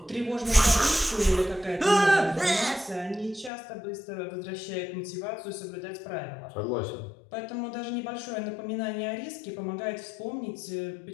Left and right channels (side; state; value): right; drops out; at 3.5 s